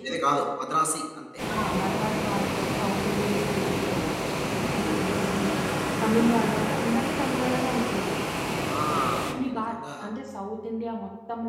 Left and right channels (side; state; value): both; identical; correlation 1.00